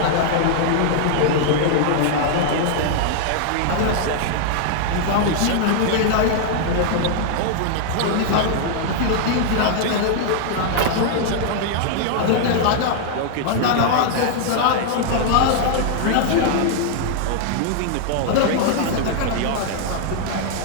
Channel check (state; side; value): different; both; correlation 0.00